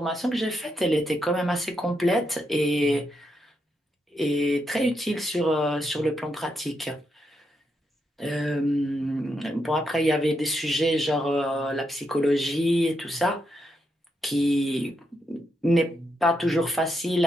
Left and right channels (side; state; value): both; normal; correlation 0.81